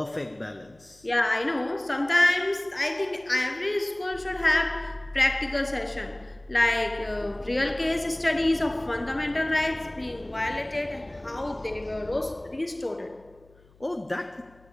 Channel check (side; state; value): left; noise; hum, 29 dB below the sound